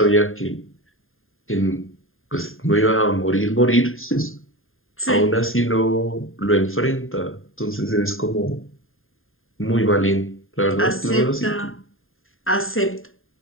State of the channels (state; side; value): late; right; 0.60 ms